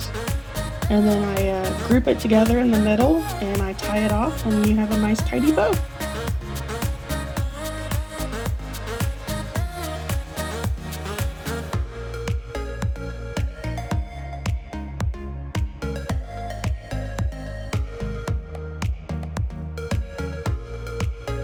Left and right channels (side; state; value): both; identical; correlation 1.00